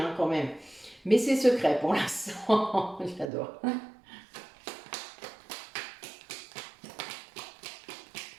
quand même. Mais c'est secret pour l'instant. J'adore.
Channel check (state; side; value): drops out; left; at 3.2 s